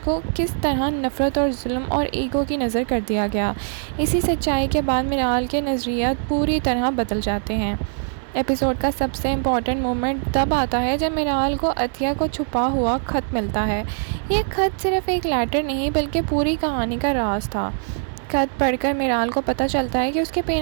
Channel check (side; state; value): left; silent; digital silence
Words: किस तरह नफ़रत और जुल्म और ईगो की नज़र कर दिया गया। इसी सच्चाई के बाद मिराल के नज़रियात पूरी तरह बदल जाते हैं। एपिसोड का सबसे इम्पॉर्टेंट मोमेंट तब आता है जब मिराल को अतिया को छुपा हुआ ख़त मिलता है। ये ख़त सिर्फ एक लेटर नहीं बल्कि पूरी कहानी का राज था। ख़त पढ़कर मिराल को पता चलता है कि उसके